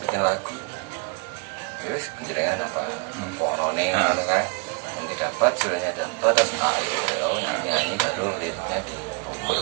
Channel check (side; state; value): left; quieter; 35.8 dB